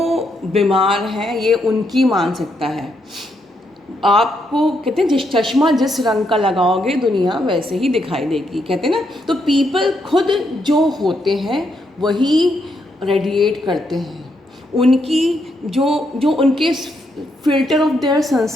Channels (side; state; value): both; normal; correlation 0.78